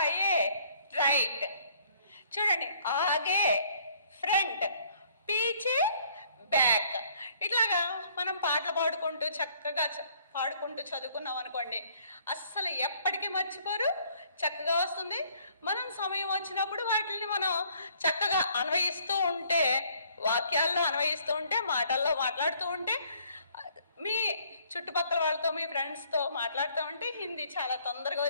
రైట్. చూడండి ఆగే ఫ్రంట్, పీచే బ్యాక్. ఇట్లాగా మనం పాటలు పాడుకుంటూ చక్కగా పాడుకుంటూ చదువుకున్నాం అనుకోండి, అస్సలు ఎప్పటికీ మర్చిపోరు, చక్కగా వస్తుంది. మనం సమయం వచ్చినప్పుడు వాటిని మనం చక్కగా అన్వయిస్తూ ఉంటే, వాక్యాల్లో అన్వయిస్తూ ఉంటే, మాటల్లో మాట్లాడుతూ ఉంటే, మీ చుట్టుపక్కల వాళ్ళతో మీ ఫ్రెండ్స్తో మాట్లాడుతూ ఉంటే హిందీ చాలా తొందరగా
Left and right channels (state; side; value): inverted; both; correlation -0.62